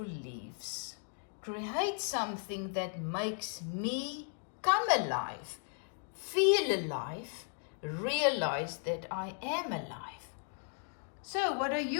leaves. Create something that makes me come alive, feel alive, realize that I am alive. So what are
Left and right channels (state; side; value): silent; right; 54 dB below the other